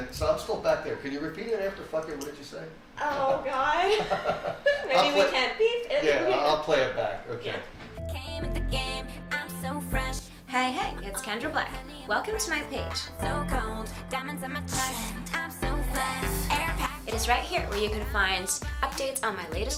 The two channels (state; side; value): identical; both; correlation 1.00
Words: so I'm still back there. Can you repeat it after "fuck it"? What did you say? Oh God. Maybe we can't beep it. Yeah, I'll play it back. Okay. Came at the game, I'm so fresh. Hey, it's Kendra Black. Welcome to my page. So cold. Diamonds on my chest, I'm so fast. Air pack. It is right here where you can find updates on my